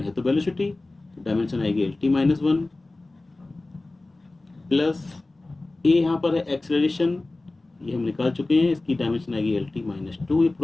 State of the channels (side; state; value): right; quieter; 3.0 dB